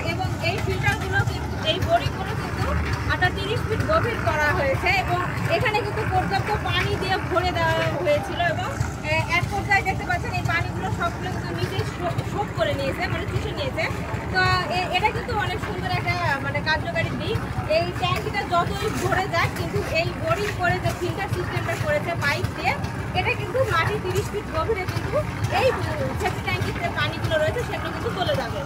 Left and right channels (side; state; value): both; identical; correlation 1.00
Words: এবং এই ফিল্টারগুলো কিন্তু এই বোরিংগুলো কিন্তু 30 ফিট গভীর করা হয়েছে, এবং এখানে কিন্তু পর্যাপ্ত পানি দিয়ে ভরে দেওয়া হয়েছিল, এবং এক পর্যায়ে দেখতে পাচ্ছেন এই পানিগুলো সবগুলো কিন্তু নিজেই শোধ করে নিয়েছে, মানে চুষে নিয়েছে। তো এটা কিন্তু অনেক সুন্দর একটা মানে কার্যকারী দিক। এই ট্যাঙ্কিটা যতই ভরে যায় কিন্তু এই বোরিং করে যে ফিল্টার সিস্টেমটা করেছে পাইপ দিয়ে, এটা কিন্তু মাটি 30 ফিট গভীরে কিন্তু এই সেফটি ট্যাঙ্কিতে পানিগুলো রয়েছে সেগুলো কিন্তু চলে যাবে।